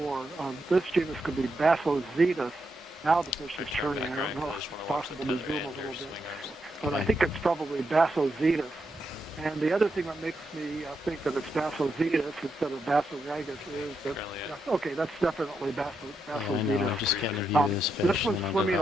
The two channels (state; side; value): normal; both; correlation 0.83